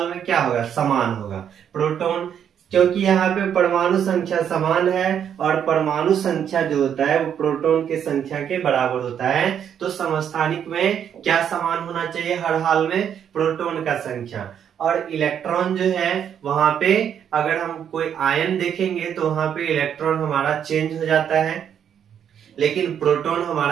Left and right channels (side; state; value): left; quieter; 8.7 dB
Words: में क्या होगा, समान होगा। प्रोटॉन, क्योंकि यहाँ पे परमाणु संख्या समान है और परमाणु संख्या जो होता है वो प्रोटॉन की संख्या के बराबर होता है। तो समस्थानिक में क्या समान होना चाहिए हर हाल में, प्रोटॉन का संख्या। और इलेक्ट्रॉन जो है वहां पे अगर हम कोई आयन देखेंगे तो वहां पे इलेक्ट्रॉन हमारा चेंज हो जाता है, लेकिन प्रोटॉन